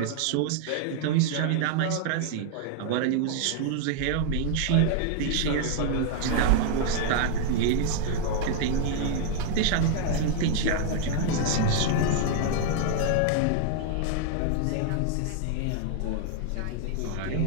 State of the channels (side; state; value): both; different; correlation 0.00